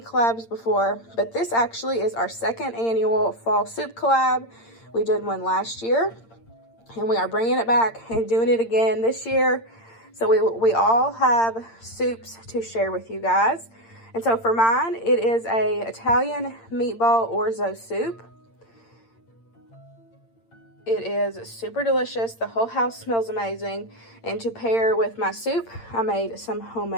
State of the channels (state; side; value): late; right; 8.8 ms